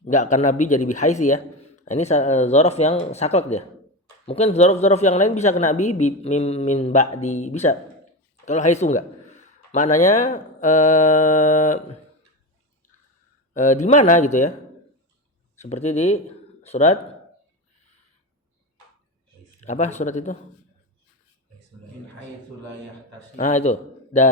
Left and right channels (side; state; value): both; normal; correlation 0.19